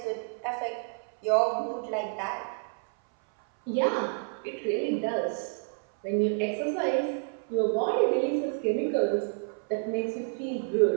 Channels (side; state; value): left; silent; 58 dB below the other